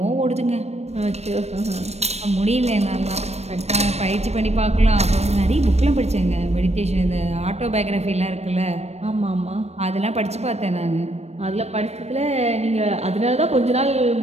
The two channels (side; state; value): left; late; 0.31 ms